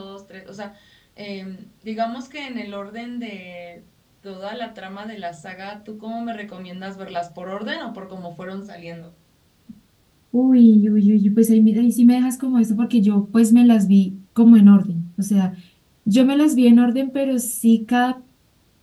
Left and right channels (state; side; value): identical; both; correlation 1.00